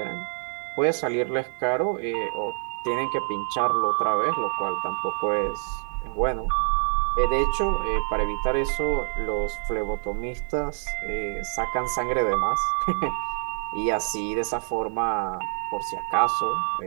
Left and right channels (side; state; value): left; silent; 61 dB below the other